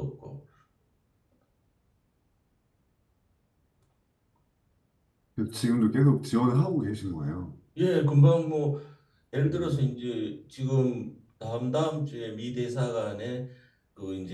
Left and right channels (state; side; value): identical; both; correlation 1.00